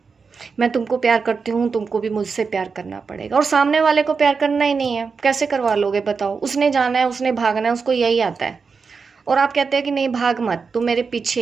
मैं तुमको प्यार करती हूँ, तुमको भी मुझसे प्यार करना पड़ेगा, और सामने वाले को प्यार करना ही नहीं है, कैसे करवा लोगे बताओ? उसने जाना है, उसने भागना है, उसको यही आता है, और आप कहते हैं कि नहीं भाग मत, तू मेरे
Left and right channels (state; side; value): quieter; left; 5.2 dB